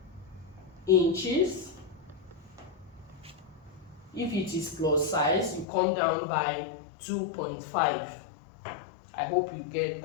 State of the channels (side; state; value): right; drops out; at 5.7 s